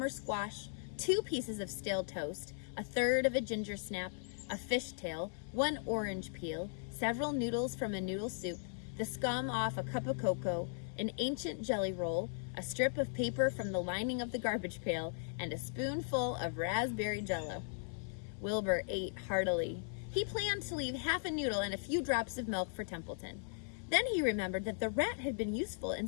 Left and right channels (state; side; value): silent; right; 53 dB below the other